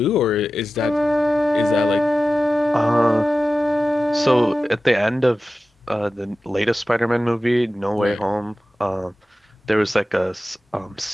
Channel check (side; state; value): both; normal; correlation 0.95